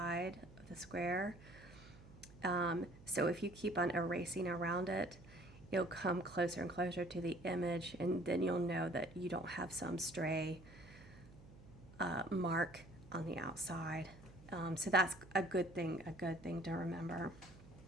of the square. So if you keep on erasing around it, it'll come closer and closer to the image, and then you'll know that you don't have some stray mark on the outside. So that's a good thing to remember.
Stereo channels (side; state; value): right; noise; hum, 20 dB below the sound